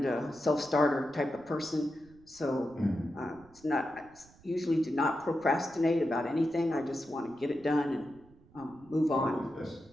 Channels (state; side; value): noise; right; rumble, 26 dB below the sound